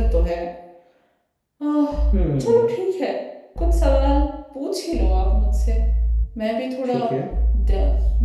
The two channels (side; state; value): both; identical; correlation 1.00